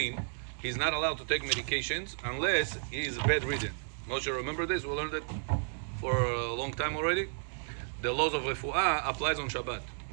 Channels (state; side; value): silent; left; digital silence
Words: he's not allowed to take medications unless he is bedridden. Moshe, remember this? We learned it for a long time already. The laws of refuah applies on Shabbat.